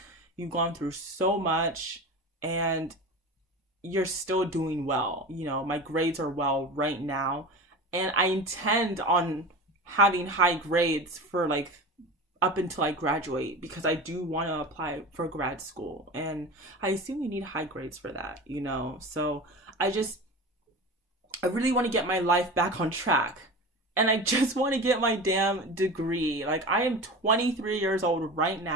you've gone through so much and you're still doing well. My grades are well right now, and I intend on having high grades for like up until I graduate, because I do want to apply for grad school, and I assume you need high grades for that, So I really want to get my life back on track. And I just want to get my damn degree. Like, I am 23 years old right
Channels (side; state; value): both; normal; correlation 0.30